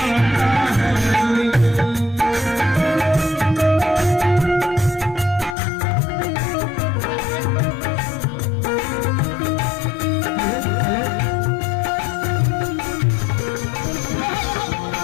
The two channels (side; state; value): right; drops out; at 5.6 s